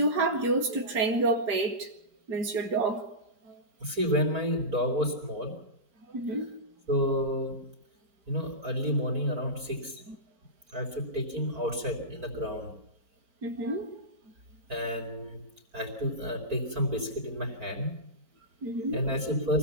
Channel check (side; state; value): left; late; 4.5 ms